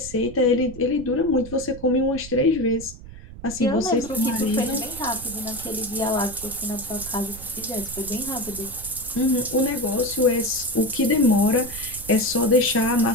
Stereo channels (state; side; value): noise; right; rumble, 15 dB below the sound